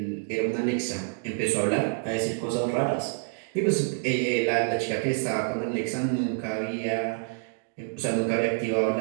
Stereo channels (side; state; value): left; silent; 60 dB below the other